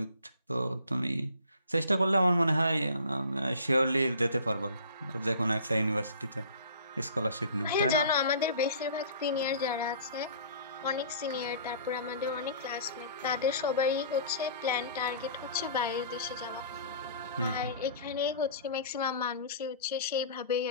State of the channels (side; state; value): both; inverted; correlation -0.46